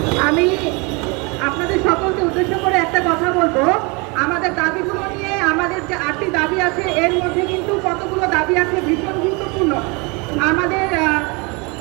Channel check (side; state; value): left; quieter; 29.2 dB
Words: আমি আপনাদের সকলকে উদ্দেশ্য করে একটা কথা বলবো। আমাদের দাবিগুলো নিয়ে আমাদের যে 8টি দাবি আছে, এর মধ্যে কিন্তু কতগুলো দাবি আছে ভীষণ গুরুত্বপূর্ণ। আমাদের